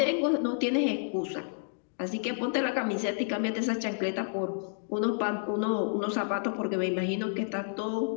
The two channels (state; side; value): silent; right; digital silence